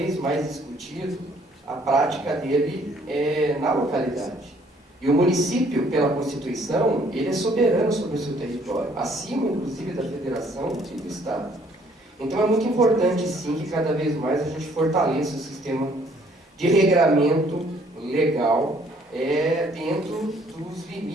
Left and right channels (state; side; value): normal; both; correlation 0.62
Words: mais discutido, a prática dele na localidade. E o município, pela Constituição, ele é soberano sobre o seu território, acima, inclusive, da federação e do Estado. Então é muito importante, sim, que cada vez mais a gente fortaleça o sistema de regramento legal dentro dos